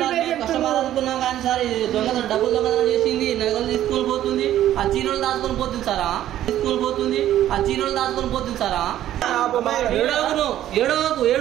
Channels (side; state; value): left; quieter; 12.4 dB